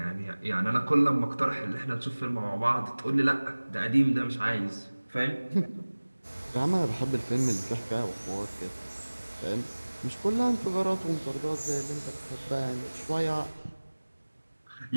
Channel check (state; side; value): inverted; both; correlation -1.00